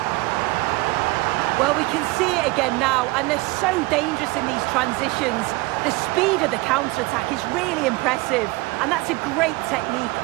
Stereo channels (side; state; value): left; quieter; 22.5 dB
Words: Well, we can see it again now, and they're so dangerous in these transitions. The speed of the counter-attack is really impressive, and that's a great technique,